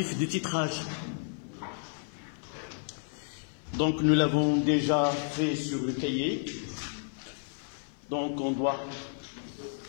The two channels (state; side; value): silent; right; 57 dB below the other